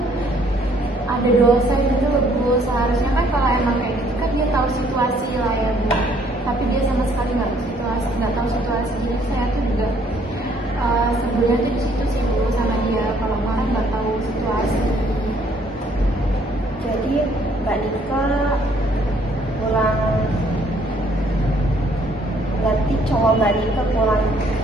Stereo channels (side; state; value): both; normal; correlation 0.64